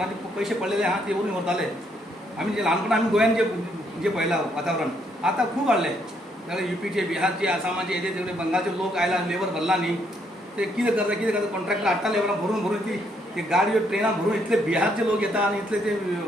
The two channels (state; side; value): normal; both; correlation 0.72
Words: पयशे पडलेले आहा ते व्हरून व्हरताले। आमी जे ल्हानपणांत आमी गोंयांत जे पळयलां वातावरण आतां खूब वाडलें, जाल्यार UPचे, बिहारचे, आसामाचे, हेजे सगळे बंगालचे लोक आयला, लेबर भरला न्ही, ते कितें करता कॉन्ट्रॅक्टर हाडटा लेबरां भरून ती गाडयो ट्रेनां भरून इतले बिहारचे लोक येता आनी इतले ते